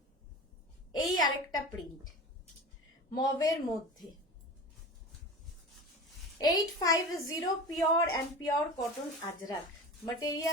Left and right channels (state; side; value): normal; both; correlation 0.32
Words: এই আরেকটা প্রিন্ট মভের মধ্যে। 850 pure and pure cotton Ajrak,